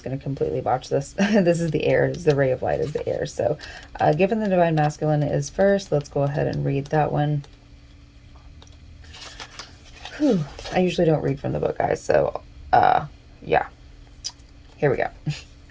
going to completely botch this. This is the air, the ray of light is the air. So given the divine masculine is first, let's go ahead and read that one. Whew. I usually don't read from the book, guys. So yeah, here we go.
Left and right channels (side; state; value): both; identical; correlation 1.00